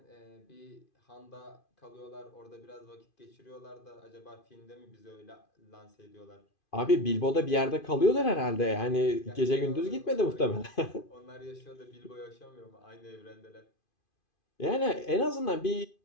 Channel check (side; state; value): right; late; 2.5 ms